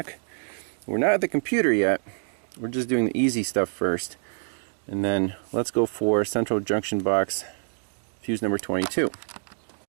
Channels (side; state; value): left; silent; digital silence